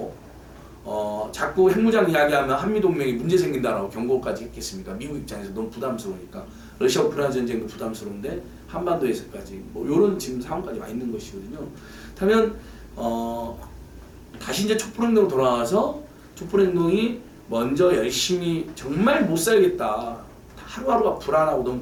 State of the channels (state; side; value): identical; both; correlation 1.00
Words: 자꾸 핵무장 이야기하면 한미동맹이 문제 생긴다라고 경고까지 했겠습니까? 미국 입장에서 너무 부담스러우니까 러시아 우크라이나 전쟁도 부담스러운데 한반도에서까지 뭐 이런 지금 상황까지 와 있는 것이거든요. 그렇다면 다시 이제 촛불행동으로 돌아와서 촛불행동이 먼저 열심히 정말 못 살겠다. 하루하루가 불안하고 너무